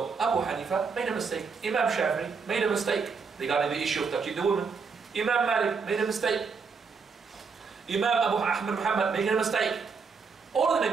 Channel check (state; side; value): quieter; left; 5.2 dB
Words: Abu Hanifa made a mistake. Imam Shafi'i made a mistake regarding the issue of touching the woman. Imam Malik made a mistake. Imam Abu Ahmad Muhammad made a mistake. All of